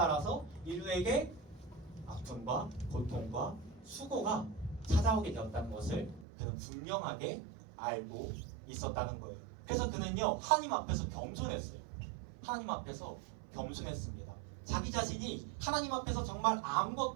인류에게 아픔과 고통과 수고가 찾아오게 되었다는 것을 그는 분명하게 알고 있었다는 거예요. 그래서 그는요, 하나님 앞에서 겸손했어요. 하나님 앞에서 겸손했습니다. 자기 자신이 하나님 앞에서 정말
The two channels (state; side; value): drops out; left; at 6.2 s